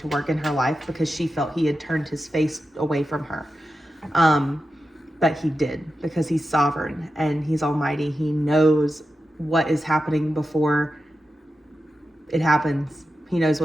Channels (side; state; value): both; normal; correlation 0.91